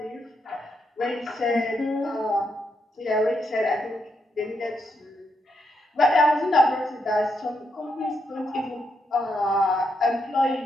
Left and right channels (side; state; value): both; normal; correlation 0.80